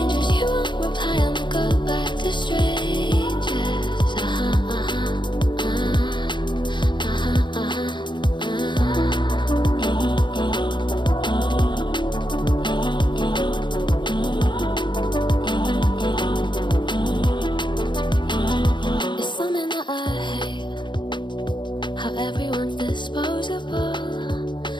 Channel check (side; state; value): right; late; 0.23 ms